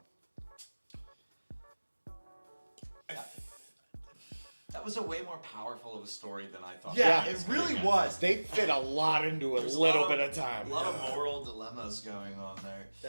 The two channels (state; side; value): inverted; both; correlation -1.00